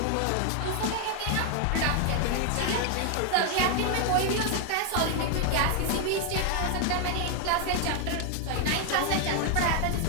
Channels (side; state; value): both; different; correlation 0.00